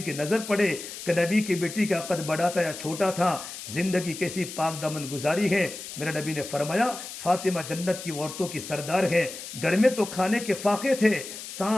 کی نظر پڑے کہ نبی کی بیٹی کا قد بڑا تھا یا چھوٹا تھا، زندگی کیسی پاک دامن گزاری ہے۔ میرے نبی نے فرمایا فاطمہ جنت کی عورتوں کی سردار ہے۔ گھر میں تو کھانے کے فاقے تھے،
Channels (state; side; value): noise; left; hiss, 10 dB below the sound